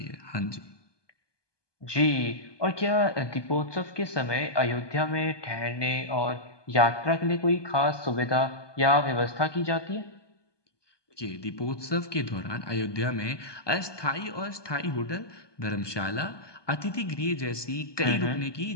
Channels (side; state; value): right; late; 1.2 ms